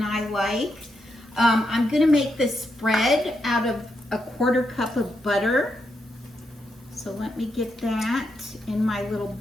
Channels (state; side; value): normal; both; correlation 0.82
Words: I like. I'm going to make this spread out of a 1/4 cup of butter. So let me get that in my little